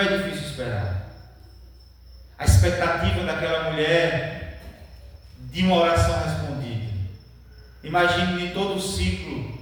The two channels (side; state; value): both; identical; correlation 1.00